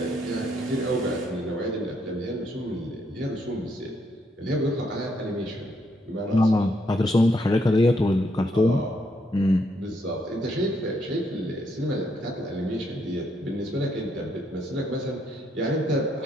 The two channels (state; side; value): normal; both; correlation 0.74